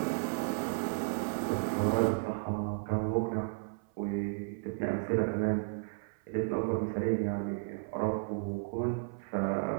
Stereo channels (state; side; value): silent; left; 55 dB below the other